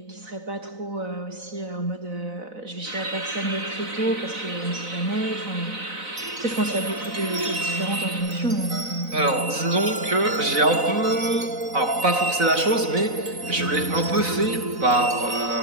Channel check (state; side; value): late; left; 4.0 ms